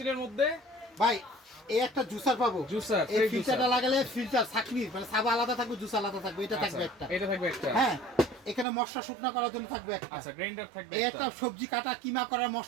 মধ্যে? ভাই এই একটা জুসার পাবো, জুসার, এই ফ্রেশ ফিল্টারটা জুসার। লাগালে ফিল্টার ছাকনি, মানে সাবা আলাদা থাকবে, জুস আলাদা থাকবে, এটা আচ্ছা, থাকবে একটা। এটা থাকবে একটা। হ্যাঁ, এখানে মশলা শুকনা করার জন্য থাকবে একটা। আচ্ছা গ্রাইন্ডার থাকবে এই একটা। একটা সবজি কাটা কিমা করার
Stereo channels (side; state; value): left; drops out; at 8.7 s